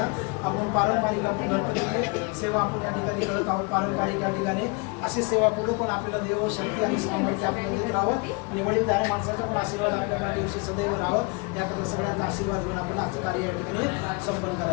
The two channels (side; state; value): right; quieter; 30.4 dB